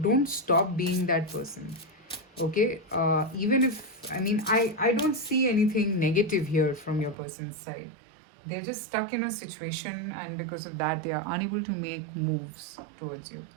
stop being that person. Okay, even if I don't see anything negative here from your person's side. They're just stuck in a situation, and because of that they are unable to make moves towards you.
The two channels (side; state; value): left; drops out; at 7.2 s